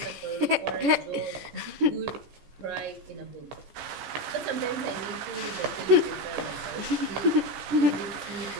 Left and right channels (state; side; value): late; left; 15 ms